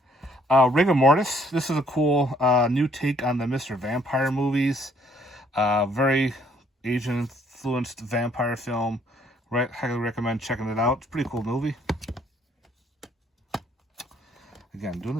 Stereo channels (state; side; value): normal; both; correlation 0.65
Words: Rigor Mortis. This is a cool new take on the Mr. Vampire movies. Very Asian-influenced vampire film. Highly recommend checking it out. It's a pretty cool movie. Again, doing